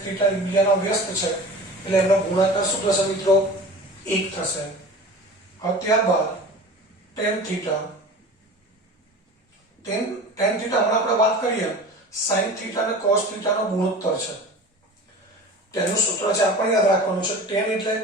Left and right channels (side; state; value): both; normal; correlation 0.37